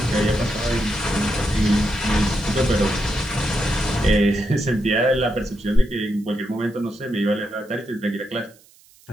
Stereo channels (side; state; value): right; noise; hiss, 28 dB below the sound